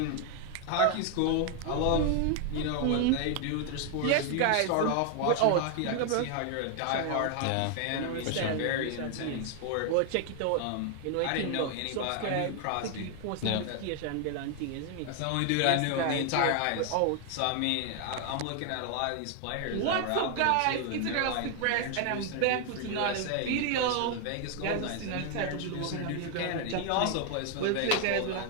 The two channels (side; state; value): both; different; correlation 0.00